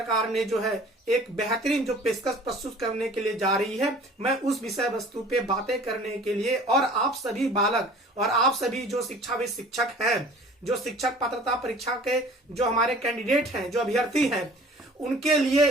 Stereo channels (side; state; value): both; normal; correlation 0.47